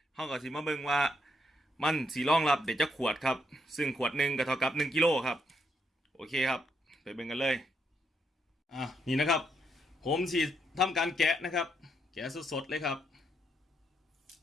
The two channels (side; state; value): both; normal; correlation 0.77